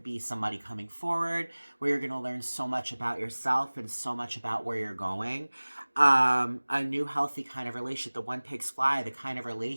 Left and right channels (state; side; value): inverted; both; correlation -1.00